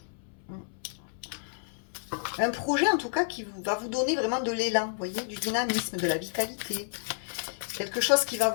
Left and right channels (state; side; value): silent; right; 58 dB below the other